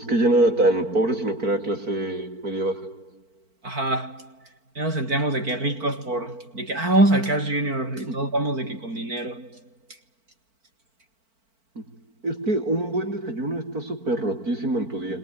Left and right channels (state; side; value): late; left; 4.5 ms